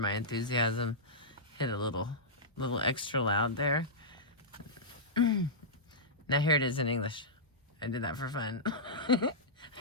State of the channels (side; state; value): both; normal; correlation -0.13